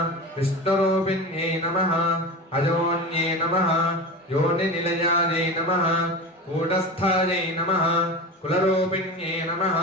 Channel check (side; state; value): both; normal; correlation 0.28